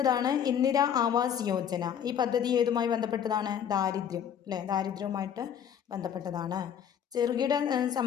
ഇന്ദിര ആവാസ് യോജന. ഈ പദ്ധതി ഏതുമായി ബന്ധപ്പെട്ടതാണ്? ദാരിദ്ര്യം അല്ലേ, ദാരിദ്ര്യവുമായിട്ട് ബന്ധപ്പെട്ടതാണ്. ചെറുകിട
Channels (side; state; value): right; quieter; 8.7 dB